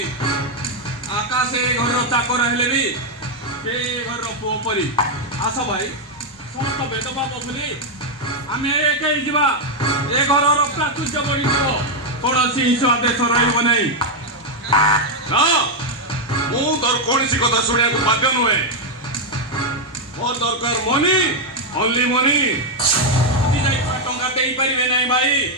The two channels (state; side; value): normal; both; correlation 0.01